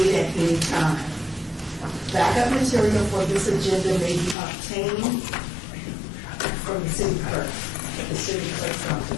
at any time. Backup material for this agenda may be obtained from the city clerk, the city clerk's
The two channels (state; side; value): drops out; right; at 4.4 s